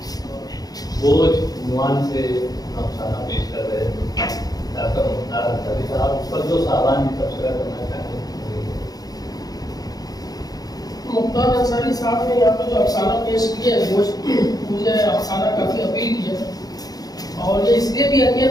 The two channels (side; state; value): right; late; 0.18 ms